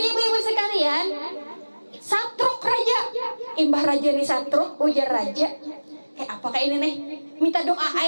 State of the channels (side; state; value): both; inverted; correlation -1.00